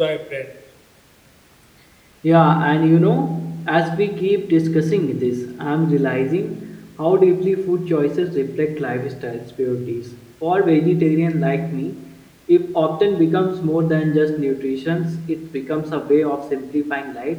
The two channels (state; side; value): identical; both; correlation 1.00